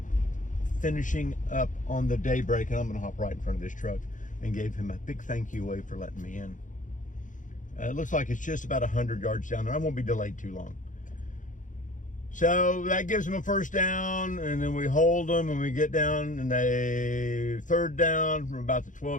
finishing up on the daybreak, and I'm going to hop right in front of this truck and gave him a big thank you wave for letting me in. It looks like it's just about 100 yards down there. I won't be delayed too long. So that gives them a 1st down, and then we hold them, and we get down, and they 3rd down from about the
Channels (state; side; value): late; right; 0.37 ms